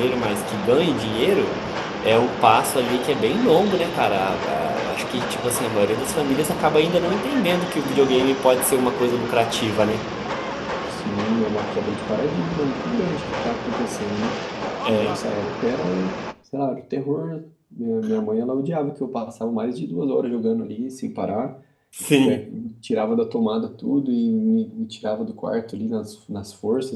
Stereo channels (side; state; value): both; identical; correlation 1.00